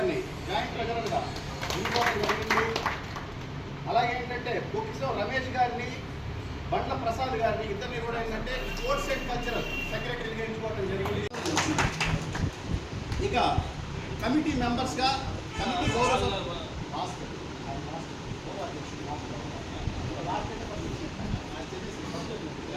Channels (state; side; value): identical; both; correlation 1.00